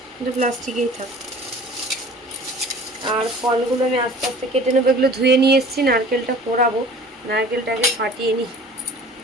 কিন্তু প্লাস্টিকেই থাক। আর ফলগুলো আমি আস্তে আস্তে কেটে নেবো, এগুলো ধুয়ে নিয়ে এসেছি। নারকেলটা পোড়াবো, নারকেলটাকে ফাটিয়ে নিই।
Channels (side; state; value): both; normal; correlation 0.45